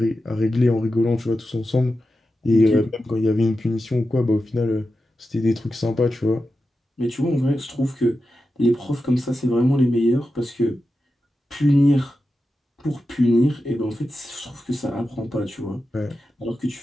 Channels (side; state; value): both; normal; correlation 0.91